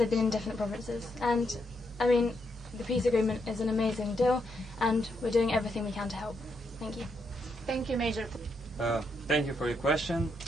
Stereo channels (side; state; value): both; normal; correlation 0.79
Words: been in different provinces. And, I mean, the peace agreement is an amazing deal, and we're doing everything we can to help. Thank you. Thank you, Major. Thank you for your question.